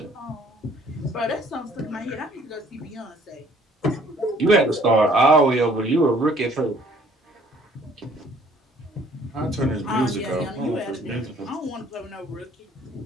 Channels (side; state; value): both; normal; correlation 0.59